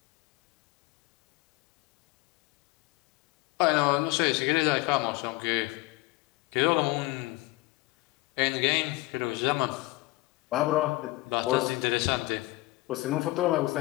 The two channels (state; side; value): quieter; right; 21.1 dB